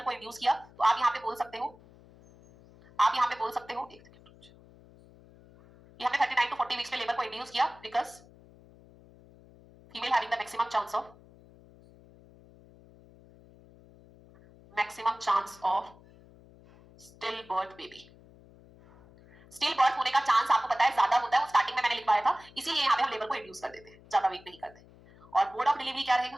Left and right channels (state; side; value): noise; left; hum, 24 dB below the sound